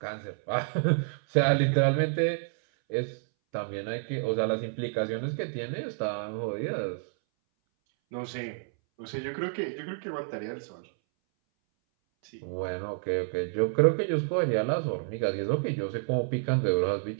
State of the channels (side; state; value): left; silent; 58 dB below the other